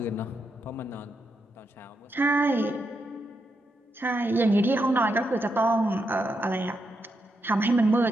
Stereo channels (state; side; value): normal; both; correlation 0.83